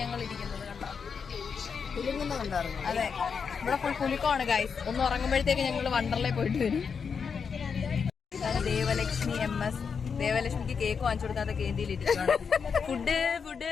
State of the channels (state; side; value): quieter; right; 6.1 dB